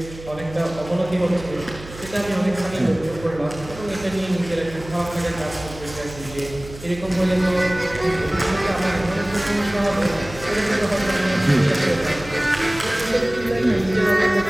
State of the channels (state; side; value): noise; right; hum, 15 dB below the sound